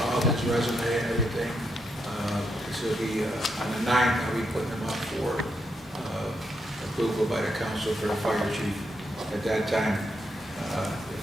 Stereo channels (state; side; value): normal; both; correlation 0.81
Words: his resume and everything. This will be on the 9th, I'll be putting him up for approval by the council for the fire chief. At that time, if